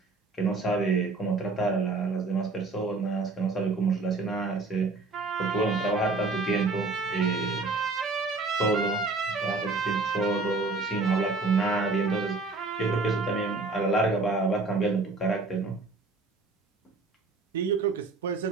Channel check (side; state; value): left; quieter; 3.6 dB